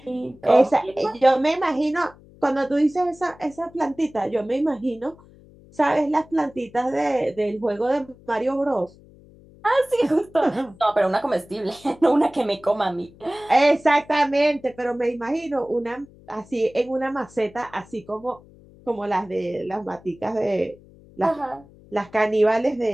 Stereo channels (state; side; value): noise; left; hum, 24 dB below the sound